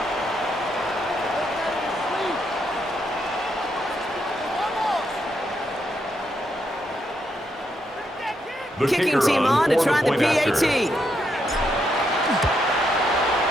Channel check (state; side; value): normal; both; correlation 0.79